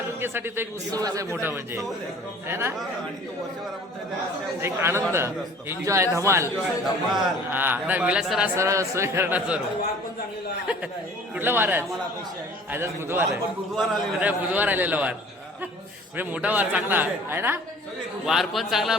तो एक उत्सवच आहे मोठा म्हणजे आहे ना आणि तो वर्षभर आपण त्या- एक आनंद एन्जॉय धमाल धमाल. हा नाही विलास सर आज सरळ सोय करणार सर्व कुठला वार आहे आज आज बुधवार आहे बुधवार आले अरे बुधवार आलेला वार म्हणजे मोठा वार चांगला आहे ना वार पण चांगला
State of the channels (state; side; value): normal; both; correlation 0.49